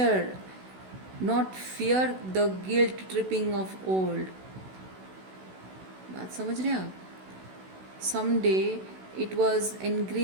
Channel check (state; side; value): late; left; 16 ms